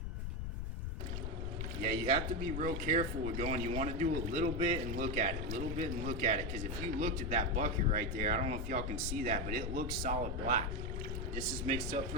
Yeah, you have to be real careful with going. You wanna do a little bit and look at it, a little bit and look at it. Because if you looked at that bucket right there, I don't know if y'all can see that, but it looks solid black. This is mixed up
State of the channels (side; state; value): left; noise; rumble, 3 dB below the sound